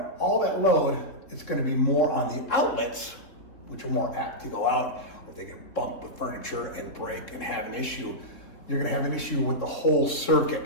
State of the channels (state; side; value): late; right; 3.6 ms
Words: all that load. It's going to be more on the outlets, which are more apt to go out, or if they get bumped with furniture and break and have an issue, you're going to have an issue with the whole